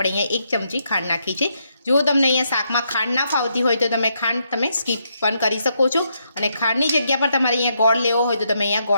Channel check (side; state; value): both; inverted; correlation -0.77